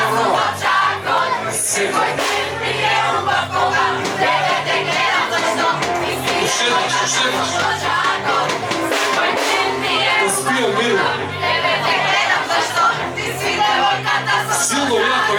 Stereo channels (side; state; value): both; identical; correlation 1.00